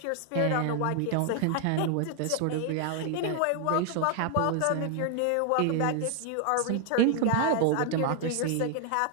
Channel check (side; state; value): both; different; correlation 0.00